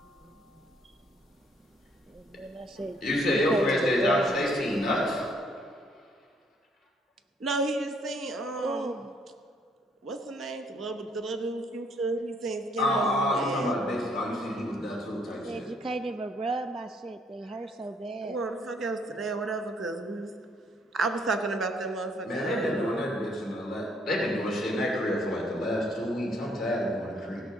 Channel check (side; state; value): both; normal; correlation 0.67